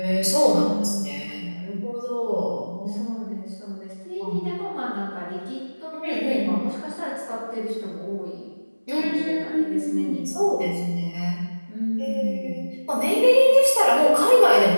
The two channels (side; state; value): both; inverted; correlation -1.00